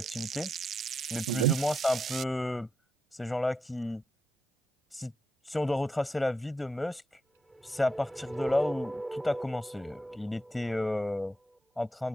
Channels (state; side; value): normal; both; correlation 0.83